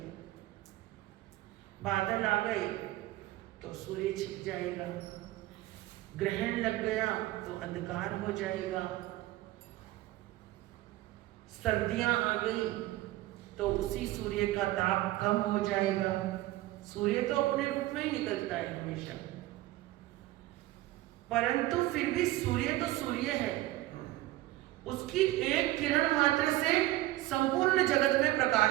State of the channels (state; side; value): quieter; left; 16.8 dB